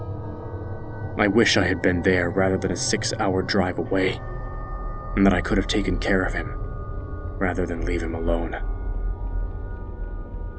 I wish I had been there rather than a 6-hour drive away, and that I could have taken care of him, rather than leave him alone.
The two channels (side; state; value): both; identical; correlation 1.00